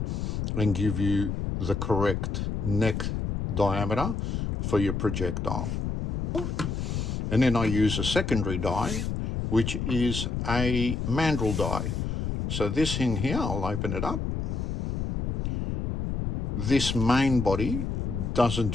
and give you the correct neck diameter for your projectile. And then I use a secondary die, which is a Mandrel die. So this thing here, I'll open it up. This main body doesn't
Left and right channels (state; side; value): noise; left; rumble, 2 dB below the sound